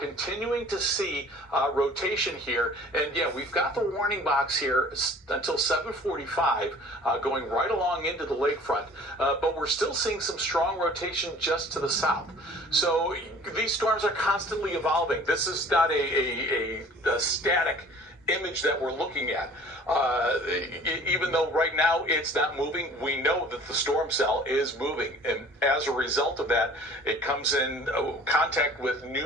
to see rotation here. And we've got the warning box here until 7:45 going right along into the lakefront. But we're still seeing some strong rotation just to the south. So these storms are constantly evolving. This is not a static image that we're looking at. Even though right now it's not moving, we know that the storm cell is moving, and as a result of that, it comes in contact with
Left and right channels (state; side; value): normal; both; correlation 0.49